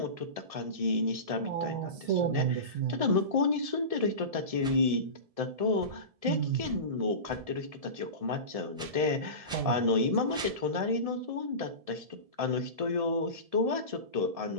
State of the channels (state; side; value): late; left; 1.7 ms